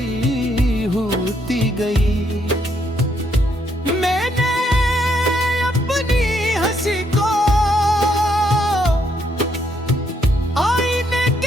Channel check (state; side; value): normal; both; correlation 0.74